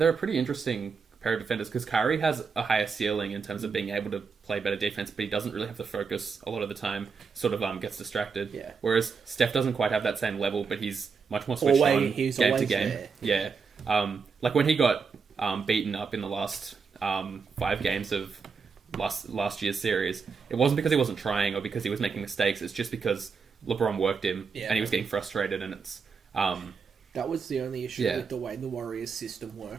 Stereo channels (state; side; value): quieter; left; 5.4 dB